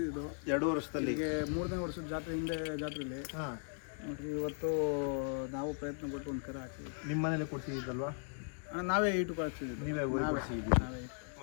2 ವರ್ಷದಲ್ಲಿ ಈಗ 3ನೇ ವರ್ಷದ ಜಾತ್ರೆ ಹಿಂದೆ ಜಾತ್ರೆಯಲ್ಲಿ ನೋಡ್ರಿ ಇವತ್ತು ನಾವು ಪ್ರಯತ್ನ ಪಟ್ಟು ಒಂದು ಕರ ಹಾಕ್ತೀವಿ. ನಿಮ್ಮ ಮನೇಲೆ ಕೊಡ್ಸಿದ್ದಲ್ವಾ ಅಣ್ಣ? ನಾವೇ ಇಟ್ಟು ಕಳಿಸ್ತಿದ್ದೀವಿ. ನೀವೇ ಕೊಡ್ಸಿದ್ದೀವಿ.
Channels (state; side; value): silent; right; 53 dB below the other